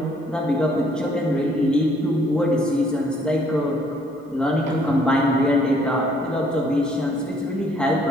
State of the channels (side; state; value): both; normal; correlation 0.64